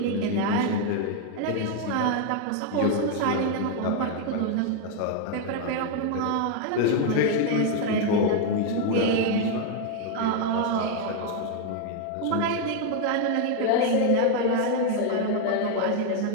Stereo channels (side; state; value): both; different; correlation 0.01